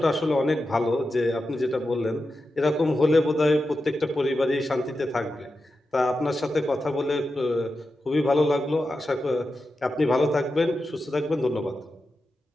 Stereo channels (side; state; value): both; normal; correlation 0.90